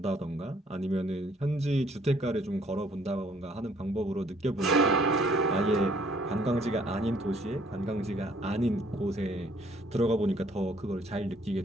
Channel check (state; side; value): normal; both; correlation 0.62